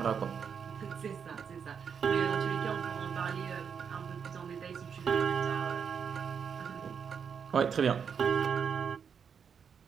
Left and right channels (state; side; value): quieter; left; 6.9 dB